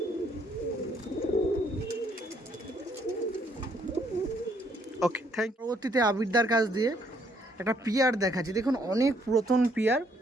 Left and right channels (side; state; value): both; normal; correlation 0.68